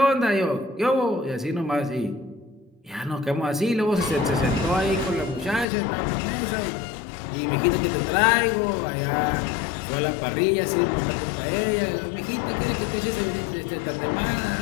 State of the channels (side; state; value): right; drops out; at 5.7 s